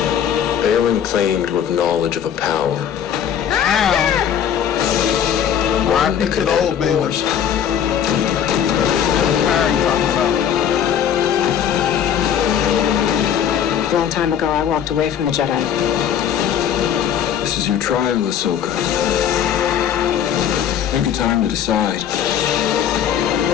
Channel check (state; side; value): quieter; right; 9.0 dB